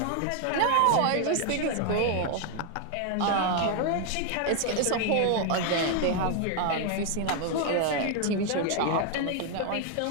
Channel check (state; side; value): different; both; correlation 0.00